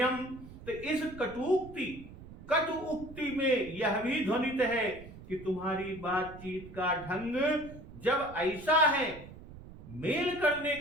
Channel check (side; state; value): right; noise; rumble, 16 dB below the sound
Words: तो इस कटु उक्ति में यह भी ध्वनित है कि तुम्हारी बातचीत का ढंग जब ऐसा है, मेल करने